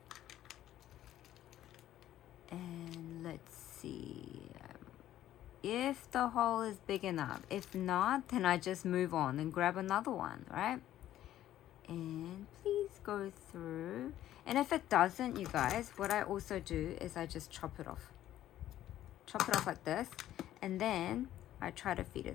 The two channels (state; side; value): quieter; right; 12.8 dB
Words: And let's see if the hole is big enough. If not, then I just move on and grab another one, right? And please go through. And if it doesn't, you guys, what I also do is I just chop it off. Chop it off like this, and then I try to feed